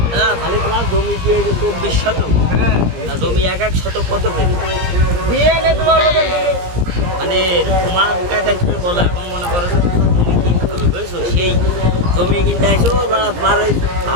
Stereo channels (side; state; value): left; late; 17 ms